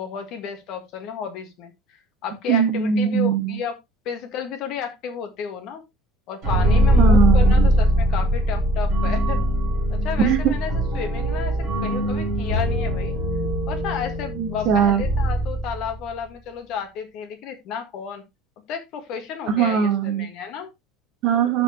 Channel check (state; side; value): normal; both; correlation 0.50